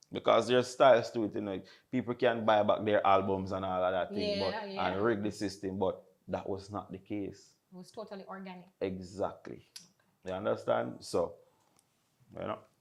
Because there's styles to it, you know. People can buy back their albums and all of that thing, Yeah, but yeah. and rig the system, but that was not the case. It was totally organic. Exactly. You understand? So, you know.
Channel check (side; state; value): both; identical; correlation 1.00